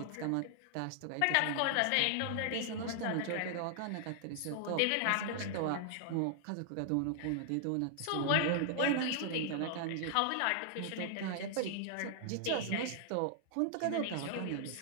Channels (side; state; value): both; different; correlation -0.01